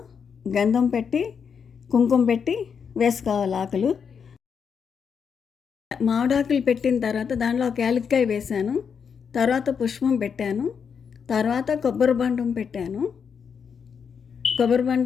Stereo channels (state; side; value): quieter; right; 6.7 dB